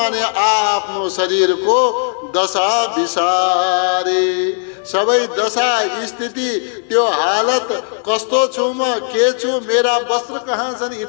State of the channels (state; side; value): silent; right; digital silence